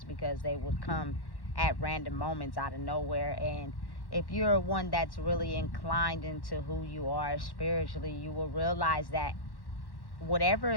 because they would come at random moments out of nowhere. And if you're one that's really inclined into who you are spiritually, you will realize that whatever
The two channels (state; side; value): late; right; 1.1 ms